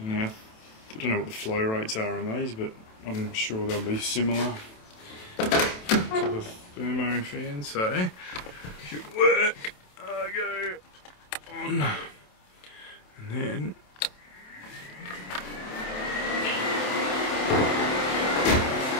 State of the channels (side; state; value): right; late; 27 ms